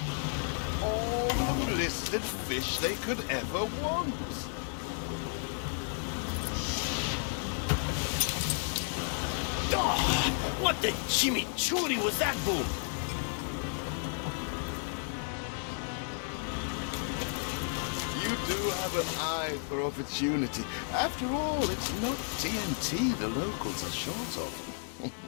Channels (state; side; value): silent; right; 56 dB below the other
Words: All the blistered fish they could ever want. Oh, what the chimichurri was that, Boom? You do have an eye for opportunity. After all, it's not TNT the locals are short of.